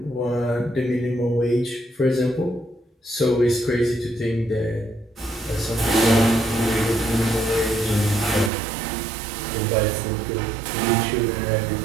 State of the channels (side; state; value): left; drops out; at 8.5 s